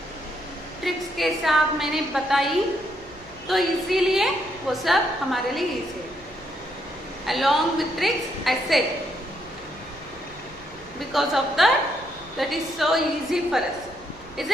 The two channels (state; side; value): noise; right; rumble, 22 dB below the sound